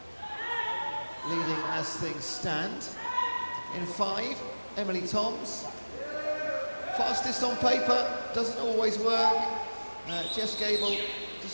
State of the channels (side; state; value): both; inverted; correlation -1.00